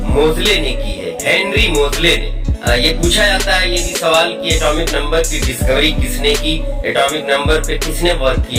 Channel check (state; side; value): identical; both; correlation 1.00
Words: मोजले ने की है, हेनरी मोजले ने। ये पूछा जाता है ये भी सवाल कि एटॉमिक नंबर की डिस्कवरी किसने की, एटॉमिक नंबर पे किसने वर्क